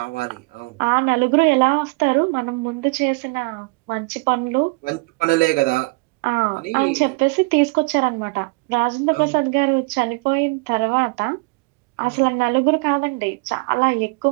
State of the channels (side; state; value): left; quieter; 28.6 dB